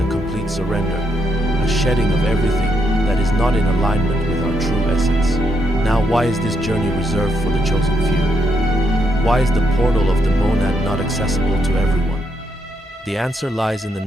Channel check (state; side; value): normal; both; correlation 0.78